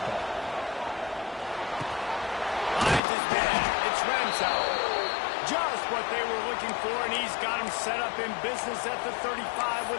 ball. Finds his man. It's Ramsauer. Just what they were looking for, and he's got him set up in business at the 35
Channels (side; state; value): right; drops out; at 3.0 s